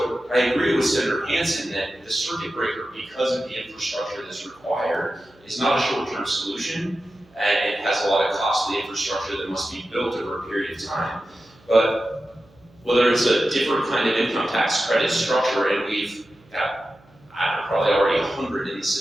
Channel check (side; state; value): right; noise; hum, 29 dB below the sound